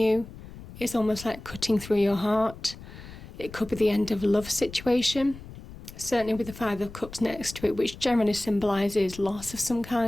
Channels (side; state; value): left; noise; rumble, 15 dB below the sound